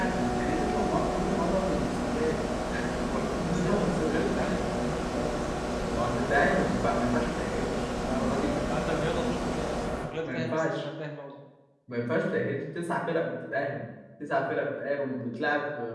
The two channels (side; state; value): both; identical; correlation 1.00